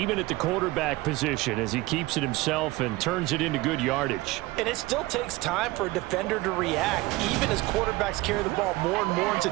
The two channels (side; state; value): left; quieter; 20.3 dB